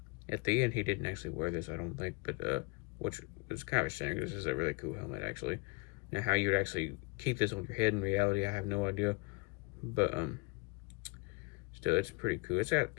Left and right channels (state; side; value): quieter; right; 29.2 dB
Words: the end he didn't actually wear this, I don't think, but which was kind of a shame, because this is a really cool helmet actually. Now, how you would actually keep this on your head in reality, I have no idea, but still, it's pretty cool. It's got